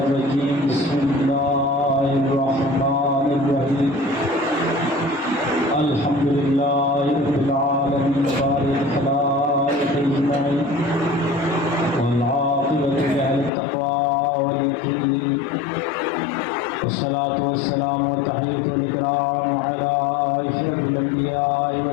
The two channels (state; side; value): drops out; right; at 13.5 s